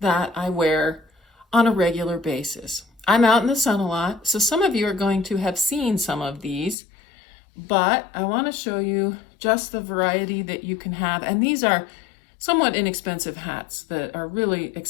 that I wear on a regular basis. I'm out in the sun a lot, so some of you are going to have seen some of these, but I want to show you just the variety that you can have. And these are somewhat inexpensive hats that are really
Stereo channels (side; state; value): right; drops out; at 6.8 s